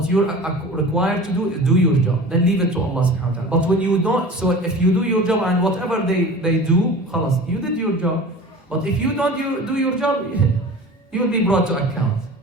you're required to do is do your job. Then leave it to Allah subhanahu wa ta'ala. But when you don't, so if you do your job and whatever they do, khalas, you did your job. But if you don't do your job, you'll be brought to account.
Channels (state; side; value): normal; both; correlation 0.38